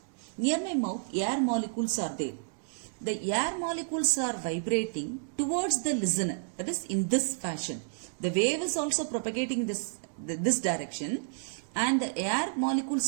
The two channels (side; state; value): left; silent; digital silence